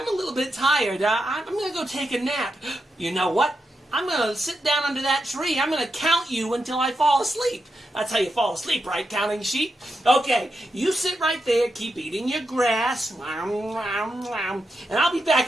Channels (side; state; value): both; normal; correlation 0.86